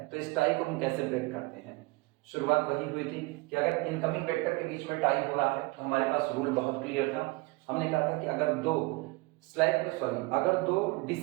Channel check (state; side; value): quieter; left; 24.0 dB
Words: तो इस टाई को हम कैसे ब्रेक करते हैं। शुरुआत वही हुई थी कि अगर इनकमिंग वेक्टर के बीच में टाई हो रहा है तो हमारे पास रूल बहुत क्लियर था। हमने कहा था कि अगर दो